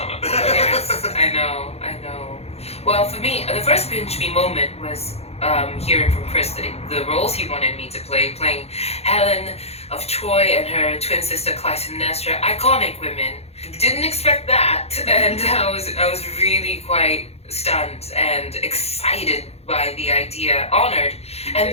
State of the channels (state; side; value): late; right; 0.30 ms